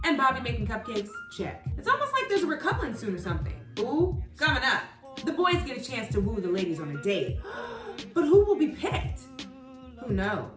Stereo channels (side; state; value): both; identical; correlation 1.00